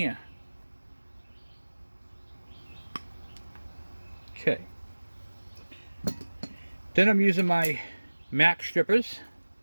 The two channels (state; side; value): inverted; both; correlation -1.00